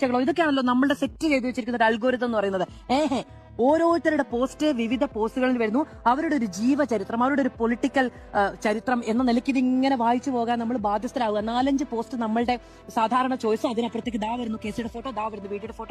ഇതൊക്കെയാണല്ലോ നമ്മളുടെ സെറ്റ് ചെയ്ത് വെച്ചിരിക്കുന്ന ഒരു അൽഗോരിതം എന്ന് പറയുന്നത്. ഓരോരുത്തരുടെ പോസ്റ്റ് വിവിധ പോസ്റ്റുകളിൽ വരുന്നു. അവരുടെ ഒരു ജീവചരിത്രം, അവരുടെ ഒരു പൊളിറ്റിക്കൽ ചരിത്രം എന്ന നിലയ്ക്ക് ഇതിങ്ങനെ വായിച്ചു പോകാൻ നമ്മൾ ബാധ്യസ്ഥരാകുക. 4-5 പോസ്റ്റ് നമ്മളുടെ സാധാരണ ചോയ്സ്, അതിനപ്പുറത്തേക്ക് ദാ വരുന്നു കേസിയുടെ ഫോട്ടോ, ദാ വരുന്നു വീഡിയോയുടെ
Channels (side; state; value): both; identical; correlation 1.00